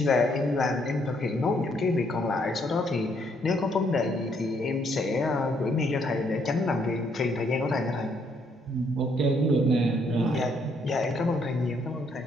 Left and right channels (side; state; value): both; normal; correlation 0.70